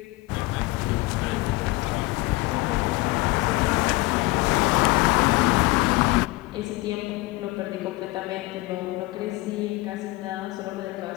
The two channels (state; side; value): quieter; right; 21.1 dB